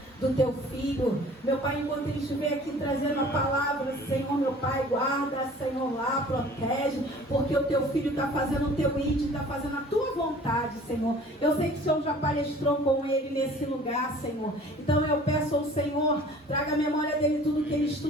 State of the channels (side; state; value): both; normal; correlation 0.48